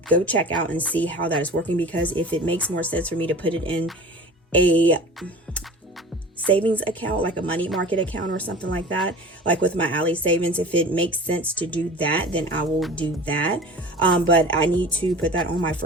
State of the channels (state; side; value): normal; both; correlation 0.38